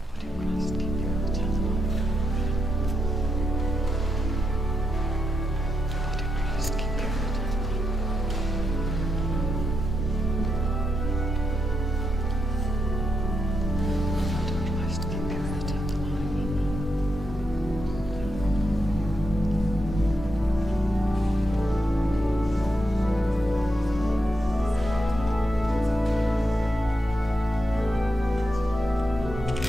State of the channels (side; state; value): both; normal; correlation 0.83